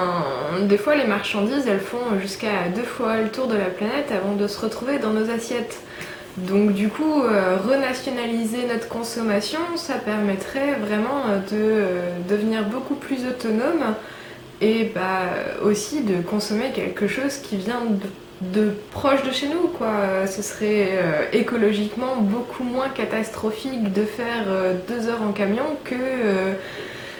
des fois, les marchandises, elles font jusqu'à 2 fois le tour de la planète avant de se retrouver dans nos assiettes. Donc du coup, renationaliser notre consommation, ça permettrait vraiment de devenir beaucoup plus autonome et aussi de consommer quelque chose qui vient de proche de chez nous, quoi. Ce serait écologiquement beaucoup moins catastrophique de faire 2 heures en camion que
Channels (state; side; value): identical; both; correlation 1.00